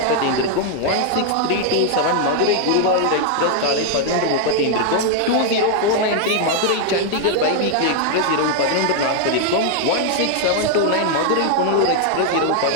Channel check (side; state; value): both; different; correlation 0.00